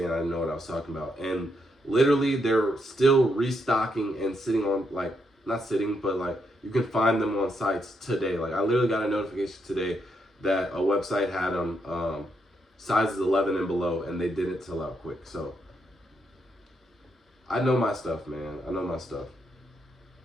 I didn't know what I was talking about. And literally, they're still restocking and sitting on like, not sitting, but like you can find them on sites today. Like I literally got a notification today that a website had them sizes 11 and below, and they didn't sell out quick. So I know my stuff, man. I know my stuff.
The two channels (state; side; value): normal; both; correlation 0.79